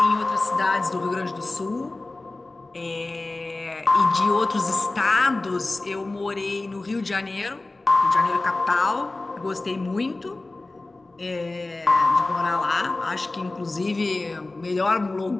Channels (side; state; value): right; quieter; 3.1 dB